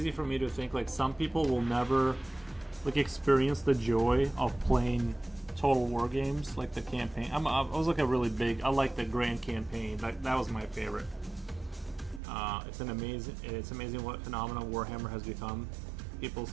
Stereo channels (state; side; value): drops out; left; at 12.2 s